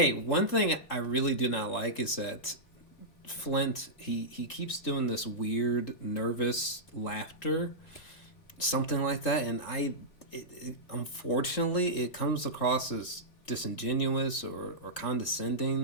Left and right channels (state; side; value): late; right; 3.8 ms